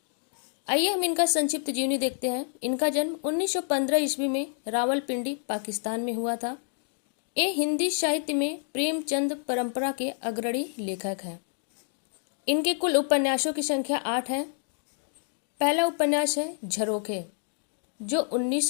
आइए हम इनका संक्षिप्त जीवनी देखते हैं। इनका जन्म 1915 ईस्वी में रावलपिंडी, पाकिस्तान में हुआ था। ये हिंदी साहित्य में प्रेमचंद परंपरा के अग्रणी लेखक हैं। इनके कुल उपन्यासों की संख्या 8 है। पहला उपन्यास है झरोखे, जो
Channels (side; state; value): right; silent; digital silence